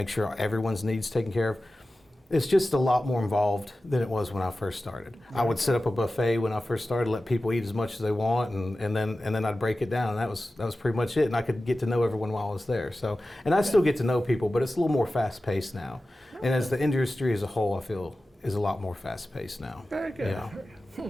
sure everyone's needs taken care of. It's just a lot more involved than it was when I first started. I would set up a buffet when I first started, let people eat as much as they want, and then I'd break it down. And that was pretty much it. And I could get to know everyone while I was there. So, and I still get to know people, but it's a little more fast paced now. And as the industry as a whole, I feel is a lot more fast paced now. Very good. Yeah.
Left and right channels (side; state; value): both; normal; correlation 0.95